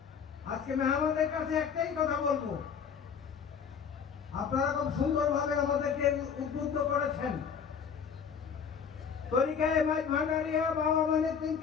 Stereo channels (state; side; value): quieter; right; 6.8 dB